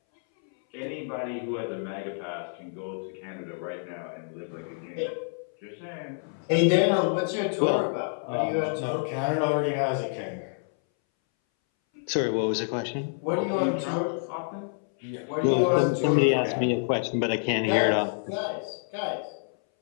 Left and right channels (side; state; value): right; silent; 59 dB below the other